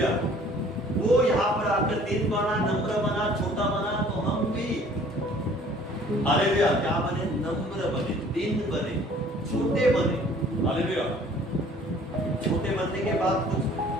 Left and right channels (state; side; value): normal; both; correlation 0.54